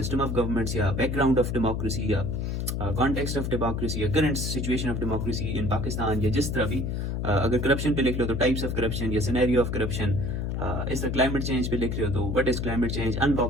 ऑफ गवर्नमेंट्स, या बैकग्राउंड ऑफ डेमोक्रेसी, या कॉन्टेक्स्ट ऑफ डेमोक्रेसी, या current situation of democracy in Pakistan, या जिस तरह भी। अगर करप्शन पे लिख लो तो टाइप्स ऑफ करप्शन या सिनेरियो ऑफ करप्शन। इस तरह क्लाइमेट चेंज पे लिख रहे हो तो what is climate change,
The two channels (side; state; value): left; noise; hum, 1 dB below the sound